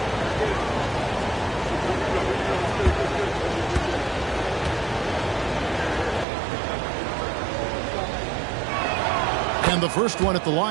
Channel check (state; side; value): drops out; left; at 6.2 s